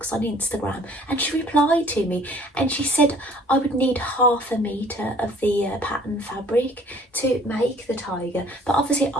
on Instagram, and she replied to me, and she said I would need 1/2 metre of the pattern fabric to make the tiger, but obviously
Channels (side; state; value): both; normal; correlation 0.54